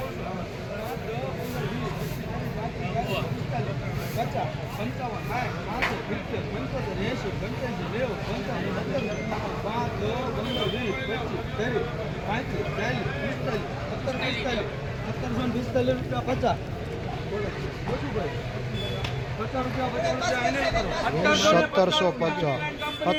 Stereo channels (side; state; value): both; identical; correlation 1.00